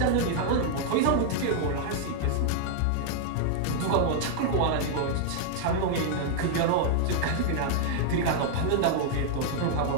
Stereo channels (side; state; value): both; different; correlation -0.01